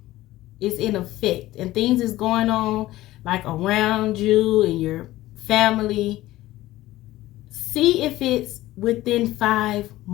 is in effect and things is going on like around you and your family, see if it's within 5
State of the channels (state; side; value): quieter; right; 16.4 dB